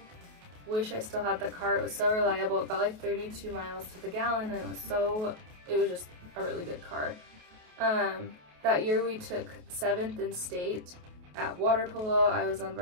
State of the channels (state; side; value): late; left; 28 ms